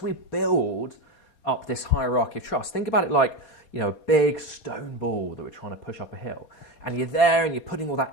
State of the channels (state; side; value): late; right; 4.2 ms